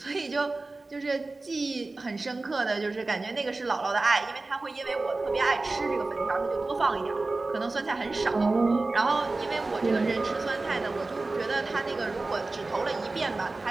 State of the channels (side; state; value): left; quieter; 3.3 dB